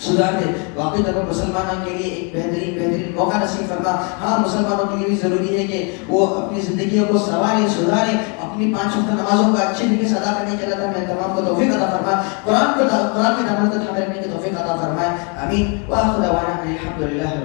سدھار دے. واقعی طور پر مسلمانوں کے لیے ایک بہترین موقع نصیب فرما. ہاں, مسلمانوں کے لیے بھی ضروری ہے کہ وہ اپنی زندگیوں کو سنواریں, سدھاریں, اپنی 5 وقت نمازوں کا اچھے طریقے سے ادا کرنے کے. اللہ تعالیٰ ہمیں تمام کو توفیق عطا فرما, قرآن کے دامن کو تھامے رکھنے کی توفیق عطا فرمائے. آمین. وآخر دعوانا الحمد للہ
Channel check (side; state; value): right; quieter; 35.7 dB